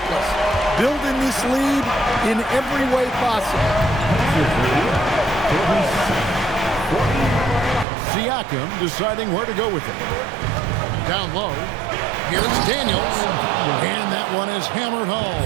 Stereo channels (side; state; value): left; drops out; at 7.9 s